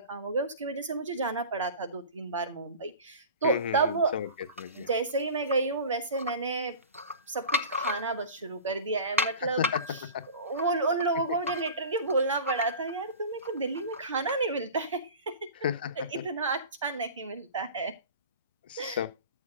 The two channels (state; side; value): inverted; both; correlation -0.36